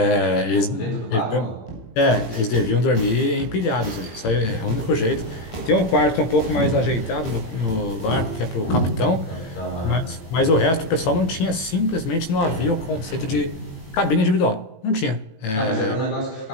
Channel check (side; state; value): right; late; 18 ms